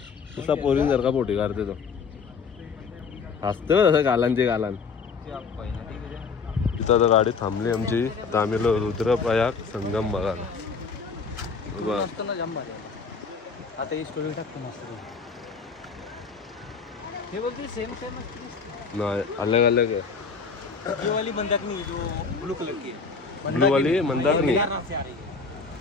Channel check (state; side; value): quieter; right; 5.1 dB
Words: तुझा पोरीन सारखा पोटी काढते तो. हसते ना तसं गालांचे गालान. तिथं आता गाडी थांबली आमची. आता आम्ही आलो रुद्रप्रयाग संगम बघायला. आता ही स्टोरी टाकतो मस्त. हे बोलते सेम सेम नाही अलग अलग है. ये वाली मंदाकिनी जो ब्लू कलर की ब्लू वाली मंदाकिनी. से आ रही है